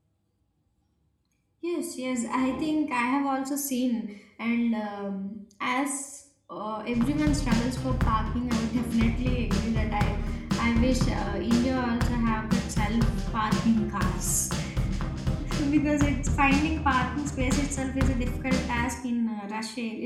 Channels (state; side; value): identical; both; correlation 1.00